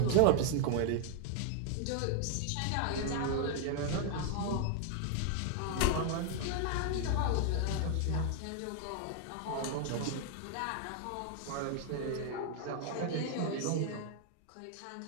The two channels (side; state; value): both; different; correlation 0.00